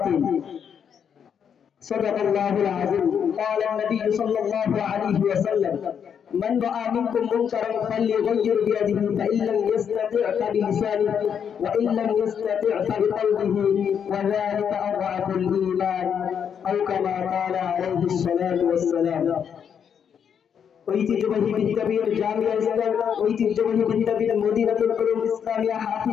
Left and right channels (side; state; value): right; quieter; 7.8 dB